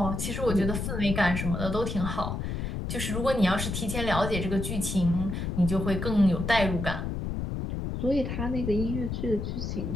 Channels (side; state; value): left; noise; rumble, 3 dB below the sound